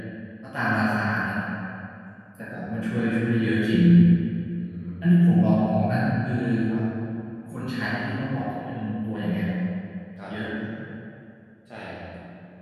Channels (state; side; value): identical; both; correlation 1.00